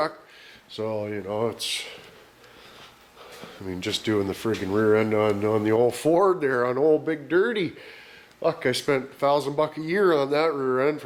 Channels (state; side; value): identical; both; correlation 1.00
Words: So, you know, I mean, just doing the friggin' rear end on the old Ford there, on old Big Dirty. Fuck, I spent $1,000 a year on that rear end